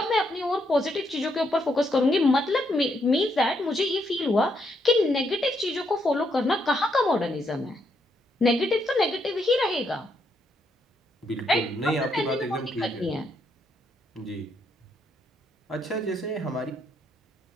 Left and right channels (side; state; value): both; normal; correlation 0.76